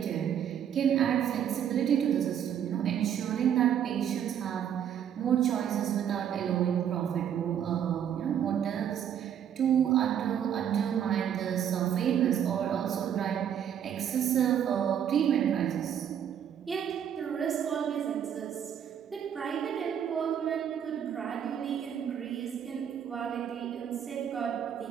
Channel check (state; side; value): quieter; left; 9.1 dB